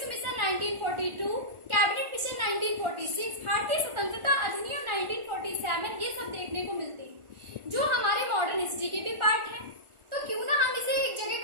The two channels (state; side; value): late; left; 1.4 ms